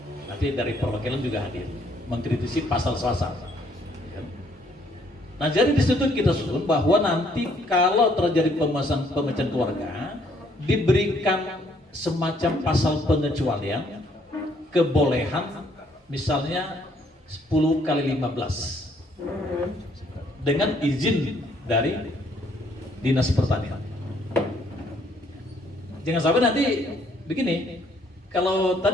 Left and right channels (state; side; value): normal; both; correlation 0.66